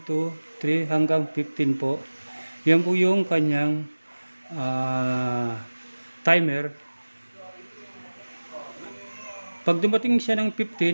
2, 3 hanggang 15 po. Yan po yung kanyang timer. Pag dumating siya ng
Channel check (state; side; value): inverted; both; correlation -1.00